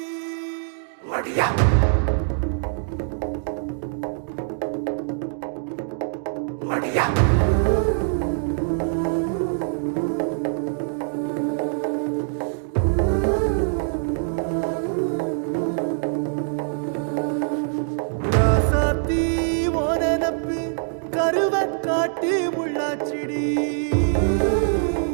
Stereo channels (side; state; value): left; silent; digital silence